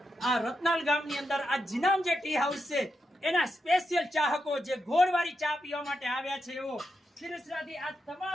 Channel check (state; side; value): normal; both; correlation 0.86